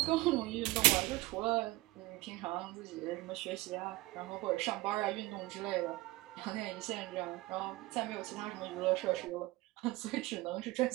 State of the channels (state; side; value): quieter; left; 20.5 dB